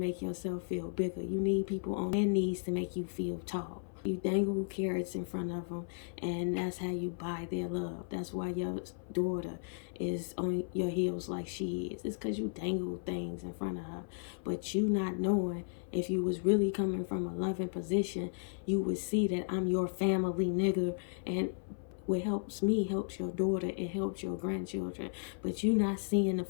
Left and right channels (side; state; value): right; silent; 55 dB below the other